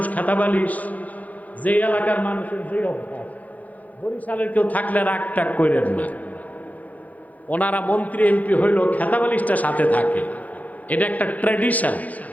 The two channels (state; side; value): late; right; 0.076 ms